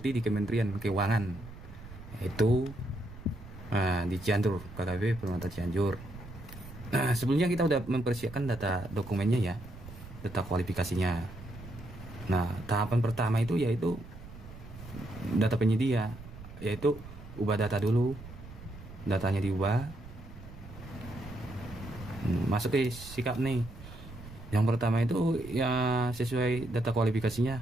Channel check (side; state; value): right; noise; rumble, 15 dB below the sound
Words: di Kementerian Keuangan, yaitu di Cianjur, KKP Permata Cianjur. Nah, sebelumnya kita udah mempersiapkan data dokumennya ya, data kualifikasinya. Nah, tahapan pertama itu yaitu data penyedia, yaitu ubah data dulu. Datanya diubah, masuk ke sikap nih. Yang pertama itu ya sesuai data